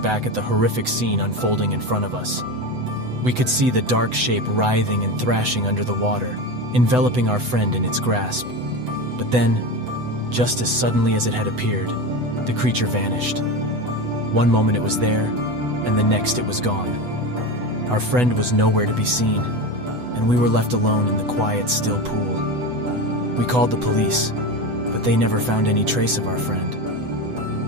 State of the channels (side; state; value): left; late; 8.0 ms